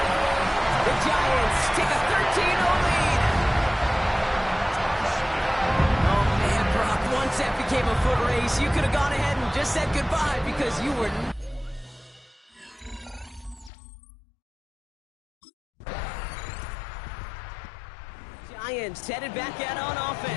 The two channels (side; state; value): right; drops out; at 13.7 s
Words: The Giants take a 13-0 lead. Oh, man, Brock, once that became a foot race, you could have gone ahead and just said goodbye because you were... Giants headed back out on